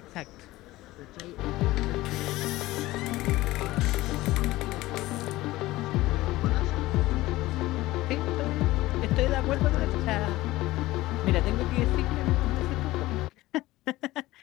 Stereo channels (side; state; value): right; quieter; 17.9 dB